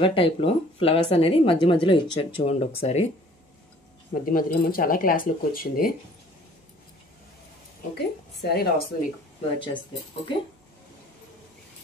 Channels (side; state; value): both; normal; correlation 0.54